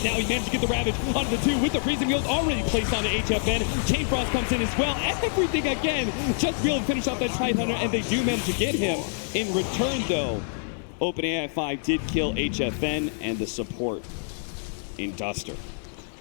Now he managed to get the Ravage onto the 2 with the Freezing Field already placed onto HFN. Chain Frost comes in as well. Everything again, just to be able to finish off that Tide Hunter, and they do manage to get him. In return, though, OpenAI 5 did kill HFN and the support in Duster.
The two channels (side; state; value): right; silent; 61 dB below the other